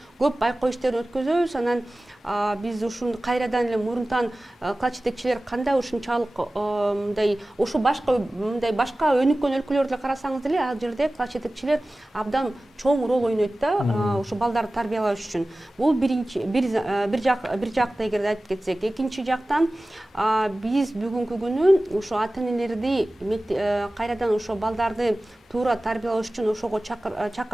көп байкоо иштерин өткөзөбүз. Анан биз ушуну кайрадан эле мурунтан класс жетекчилер кандай ушунчалык мындай ошо башка өнүккөн өлкөлөрдө карасаңыз деле, ал жерде класс жетекчилер абдан чоң роль ойнойт да, ошо балдарды тарбиялаш үчүн. Бул бир жакта эгерде айтып кетсек, экинчи жактан биз бүгүнкү күнү ошо ата-энелерди кайрадан ошо балдарды туура тарбиялаш үчүн ошого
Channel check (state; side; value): normal; both; correlation 0.97